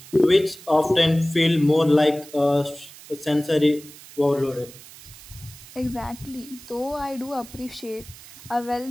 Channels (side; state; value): right; noise; hiss, 19 dB below the sound